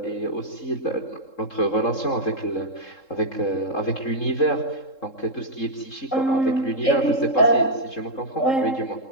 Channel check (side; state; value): right; late; 3.7 ms